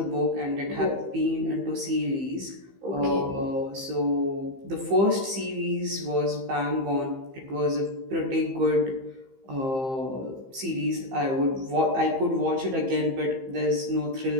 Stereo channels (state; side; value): late; left; 15 ms